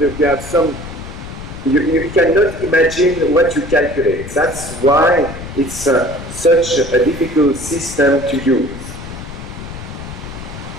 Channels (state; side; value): noise; left; rumble, 11 dB below the sound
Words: have some, you cannot imagine what you calculate. That's why it's such a difficult system to use.